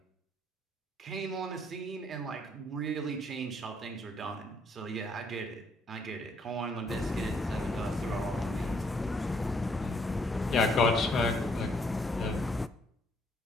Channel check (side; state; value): both; normal; correlation 0.68